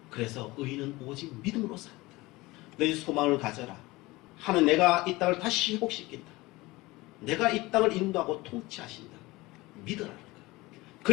그래서 의인은 오직 믿음으로 산다. 너희 소망을 가져라. 하나님 내가 이 땅을 다시 회복시킨다. 내가 이 땅을 인도하고 통치하신다. 믿으라는 거예요.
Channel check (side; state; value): right; quieter; 20.9 dB